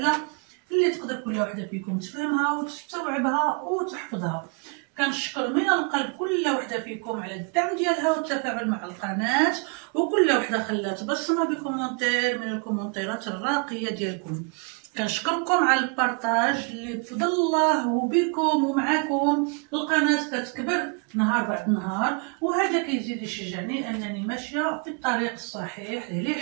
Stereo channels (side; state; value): left; quieter; 34.8 dB